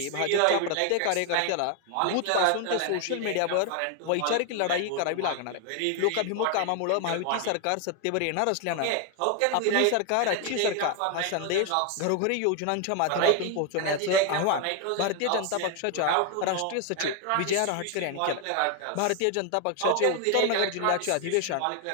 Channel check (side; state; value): both; different; correlation 0.01